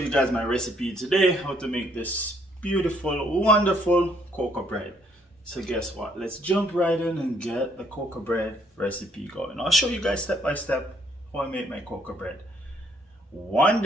guys my recipe today, how to make this beautiful, wonderful cocoa bread. So guess what? Let's jump right in and get the cocoa bread recipe going. I'll show you guys step by step how I make my cocoa bread. One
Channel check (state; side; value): normal; both; correlation 0.67